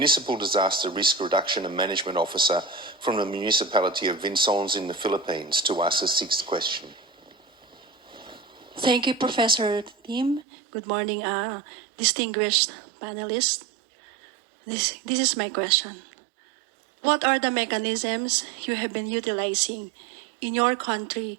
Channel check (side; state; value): left; drops out; at 10.5 s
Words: Disaster Risk Reduction and Management Officer from the municipality of Vincennes in the Philippines, to ask the sixth question. Thank you, Professor Tim. Good morning, distinguished panelists. This is my question. What are the mechanisms you have been utilizing in your